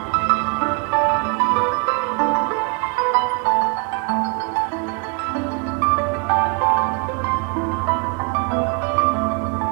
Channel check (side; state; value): left; quieter; 32.8 dB